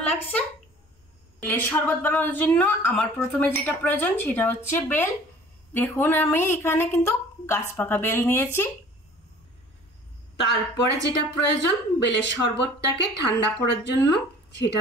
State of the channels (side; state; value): both; normal; correlation 0.49